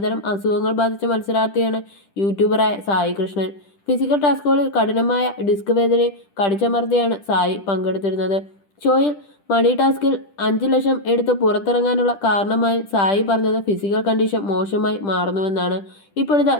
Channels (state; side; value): late; right; 10 ms